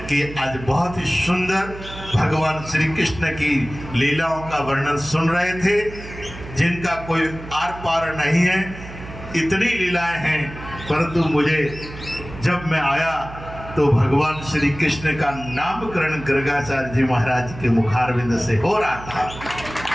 कि आज बहुत ही सुंदर भगवान श्री कृष्ण की लीलाओं का वर्णन सुन रहे थे, जिनका कोई आर पार नहीं है। इतनी लीलाएं हैं, परंतु मुझे जब मैं आया तो भगवान श्री कृष्ण का नामकरण गर्गाचार्य जी महाराज के मुखारविंद से हो रहा था।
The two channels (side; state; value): right; noise; hum, 14 dB below the sound